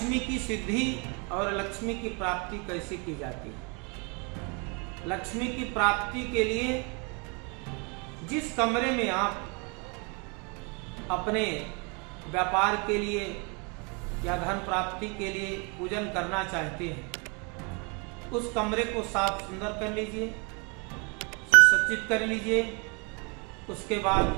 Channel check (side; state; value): left; quieter; 32.7 dB